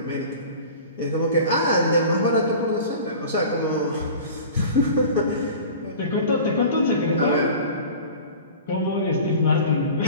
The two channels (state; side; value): inverted; both; correlation -0.39